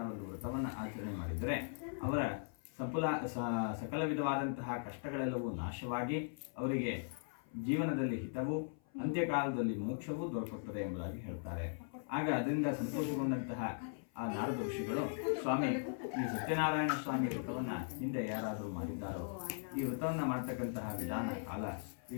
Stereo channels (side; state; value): right; silent; 52 dB below the other